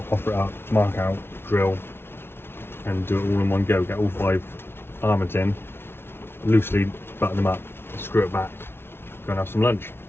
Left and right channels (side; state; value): right; late; 0.11 ms